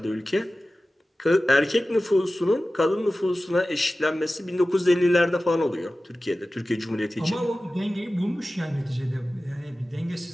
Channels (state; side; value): normal; both; correlation 0.96